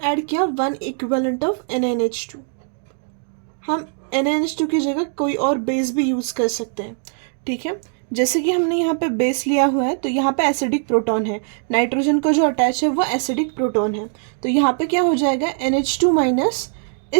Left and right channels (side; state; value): left; silent; 61 dB below the other